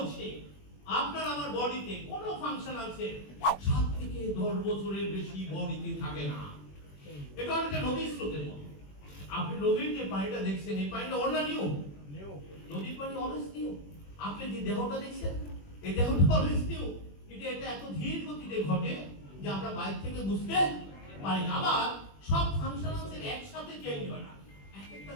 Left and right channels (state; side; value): late; right; 21 ms